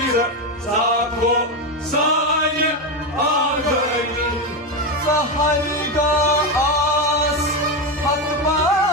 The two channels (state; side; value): normal; both; correlation 0.12